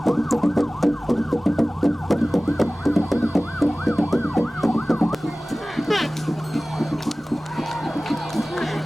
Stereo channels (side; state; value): both; normal; correlation 0.98